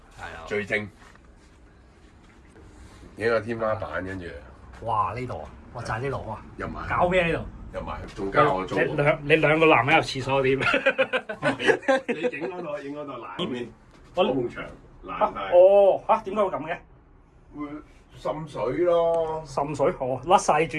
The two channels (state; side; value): identical; both; correlation 1.00